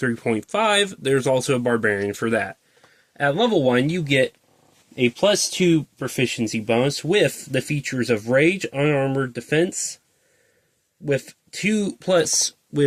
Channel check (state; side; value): identical; both; correlation 1.00